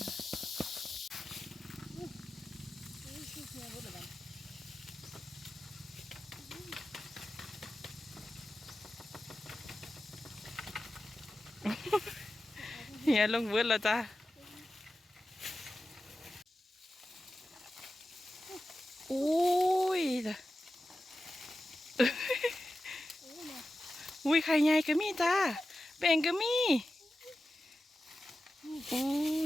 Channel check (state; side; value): normal; both; correlation 0.93